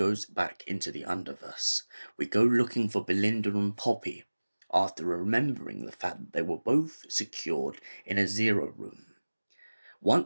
back into the Underverse, we go looking for Belinda and Poppy after remembering the fact that they were both secured in a Zero Room.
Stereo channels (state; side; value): inverted; both; correlation -1.00